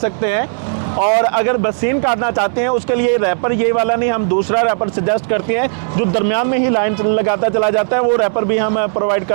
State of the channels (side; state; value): left; silent; digital silence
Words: हैं। और अगर बसीन काटना चाहते हैं उसके लिए रैपर ये वाला नहीं, हम दूसरा रैपर सजेस्ट करते हैं जो दरमियान में ही लाइन लगाता चला जाता है। वो रैपर भी हम प्रोवाइड